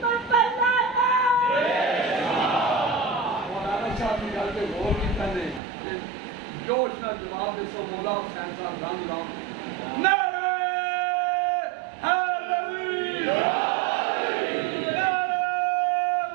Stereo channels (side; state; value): left; drops out; at 5.6 s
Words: جوش نہ جواب دے سو مولا حسین صاحب رنگ رام نعرہ حیدری، نعرہ